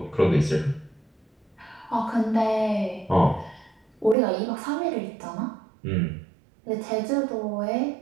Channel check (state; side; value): drops out; left; at 4.2 s